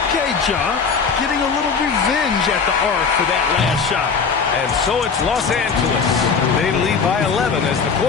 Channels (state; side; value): quieter; right; 5.6 dB